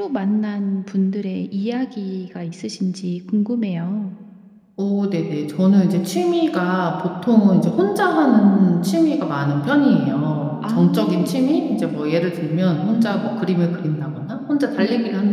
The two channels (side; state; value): both; identical; correlation 1.00